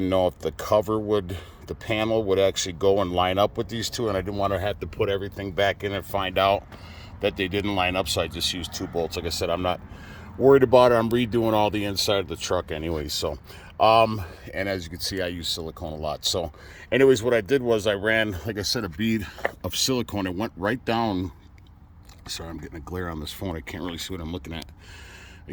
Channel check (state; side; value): identical; both; correlation 1.00